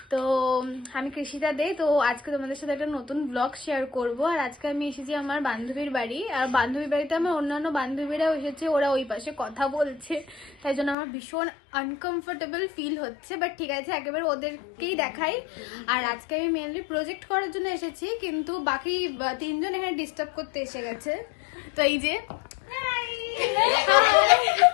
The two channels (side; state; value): right; drops out; at 11.0 s